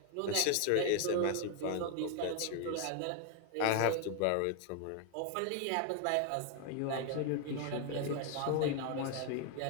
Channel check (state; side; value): different; both; correlation 0.01